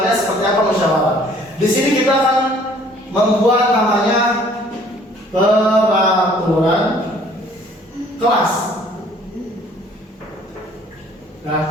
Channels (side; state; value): both; normal; correlation 0.57